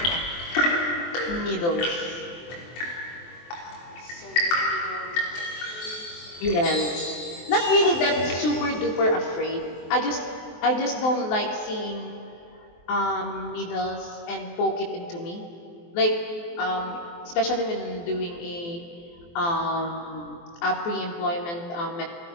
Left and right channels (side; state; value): right; late; 23 ms